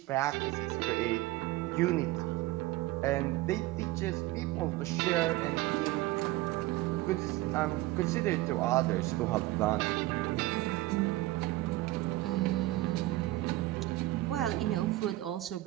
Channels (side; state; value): left; quieter; 17.7 dB